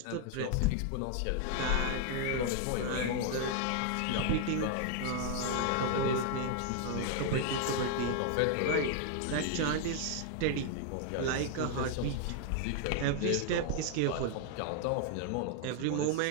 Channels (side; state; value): both; different; correlation 0.00